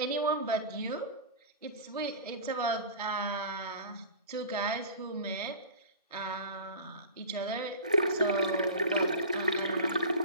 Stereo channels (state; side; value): inverted; both; correlation -0.34